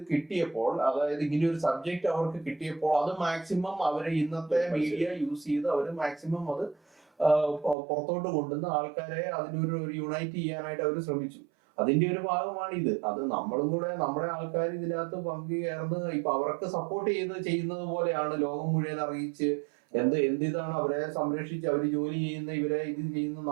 കിട്ടിയപ്പോൾ, അതായത് ഇങ്ങനെ ഒരു സബ്ജക്ട് അവർക്ക് കിട്ടിയപ്പോൾ അത് മാക്സിമം അവര് ഇന്നത്തെ മീഡിയ യൂസ് ചെയ്ത് അവര് മാക്സിമം അത് പുറത്തോട്ട് കൊണ്ടുവന്ന് ആൾക്കാരെ അതിനൊരു യുണൈറ്റ് ചെയ്യാനായിട്ട് അവർ ശ്രമിച്ചു. അതിന്റെ ഒരു ഭാഗമാണ് ഇത്. അത് നമ്മളും കൂടെ നമ്മുടെ ആൾക്കാർ ഇതിനകത്ത് പങ്കുചേർന്ന് ഇപ്പൊ അവർക്ക് സപ്പോർട്ട് ചെയ്യുന്നത് പോലെയാണ് ലോകം മുഴുവൻ അറിയിച്ച് എന്തിതാണ് അവരെ സംരക്ഷിച്ച് അവര് ജോലി ചെയ്യുന്ന ഇവരെ ഇത് ചെയ്യുന്ന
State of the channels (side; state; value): left; drops out; at 7.8 s